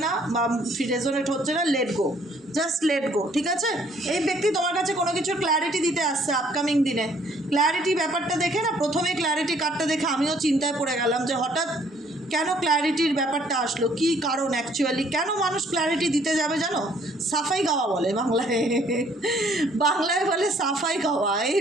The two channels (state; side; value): normal; both; correlation 0.62